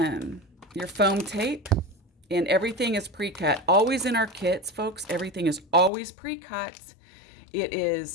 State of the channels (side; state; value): right; drops out; at 5.9 s